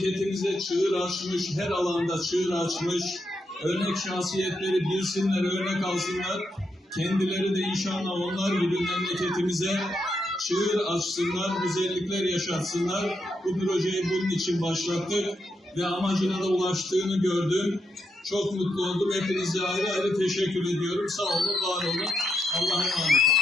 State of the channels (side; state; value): both; normal; correlation 0.81